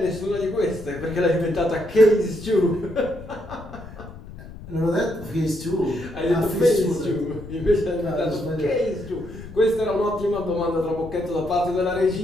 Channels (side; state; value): left; noise; rumble, 15 dB below the sound